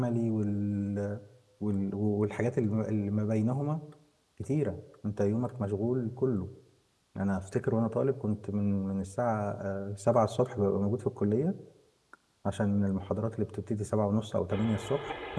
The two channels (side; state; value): both; identical; correlation 1.00